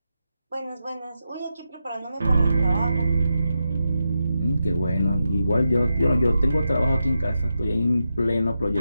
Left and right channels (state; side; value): inverted; both; correlation -0.87